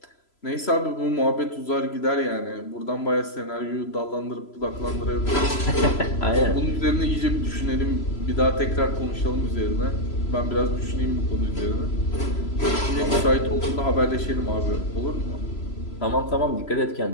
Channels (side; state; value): right; late; 3.0 ms